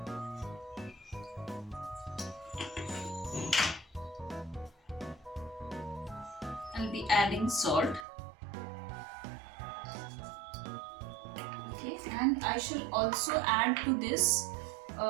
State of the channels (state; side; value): drops out; left; at 8.1 s